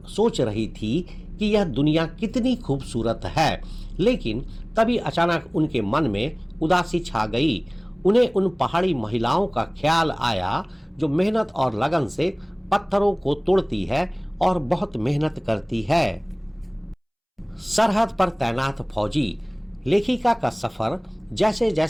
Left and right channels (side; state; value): both; identical; correlation 1.00